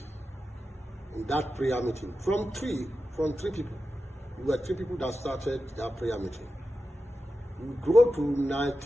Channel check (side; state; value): both; normal; correlation 0.92